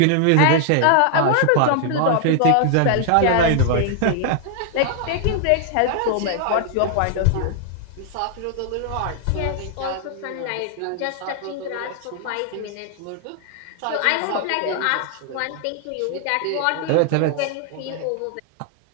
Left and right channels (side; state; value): both; different; correlation 0.00